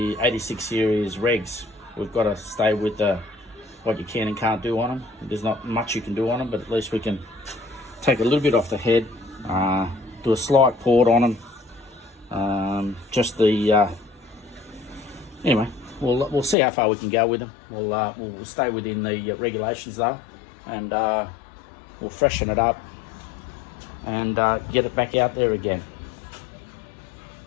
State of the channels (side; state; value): right; drops out; at 16.6 s